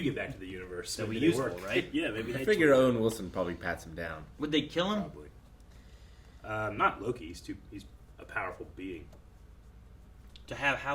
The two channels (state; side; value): identical; both; correlation 1.00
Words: get back to the universe. That'd be Maybe they useful, work. right? Yeah, maybe I they figure tweak Owen Wilson probably pats him down. Would they kill him? Probably. Not Loki. He's a powerful being. To have how